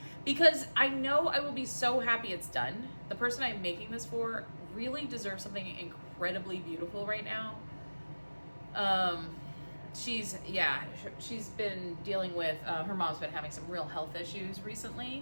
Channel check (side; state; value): both; inverted; correlation -1.00